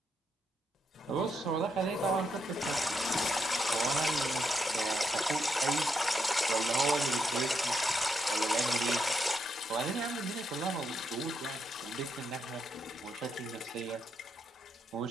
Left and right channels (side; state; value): both; normal; correlation 0.81